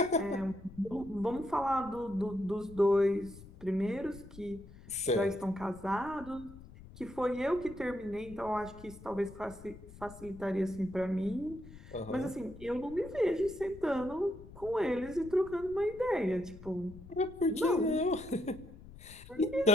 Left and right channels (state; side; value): noise; left; rumble, 18 dB below the sound